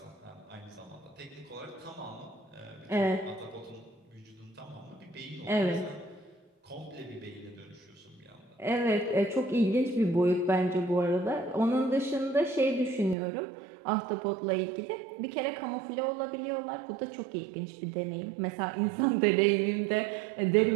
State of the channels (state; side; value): drops out; left; at 13.2 s